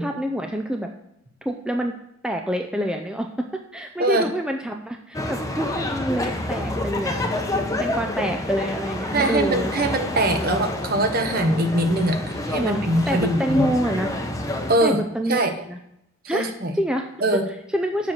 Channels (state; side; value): normal; both; correlation 0.49